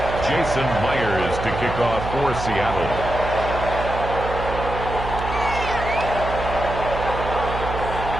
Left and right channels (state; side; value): noise; right; hum, 7 dB below the sound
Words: Jason Myers to kick off for Seattle.